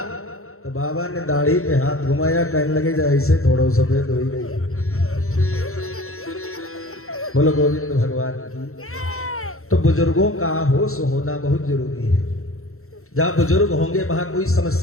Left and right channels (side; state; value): right; late; 0.63 ms